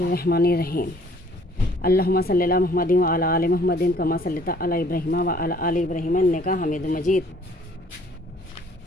अल्लाहुम्मा सल्ली अला मुहम्मदिन व अला आलि मुहम्मदिन कमा सल्लैता अला इब्राहीम व अला आलि इब्राहीम इन्नका हमीदुम मजीद।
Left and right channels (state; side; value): normal; both; correlation 0.57